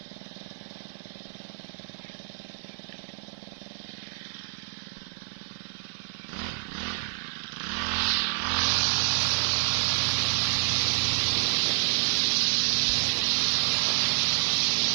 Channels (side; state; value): left; silent; digital silence